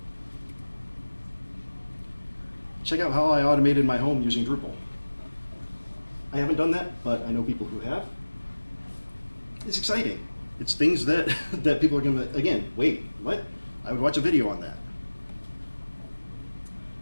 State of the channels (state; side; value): inverted; both; correlation -1.00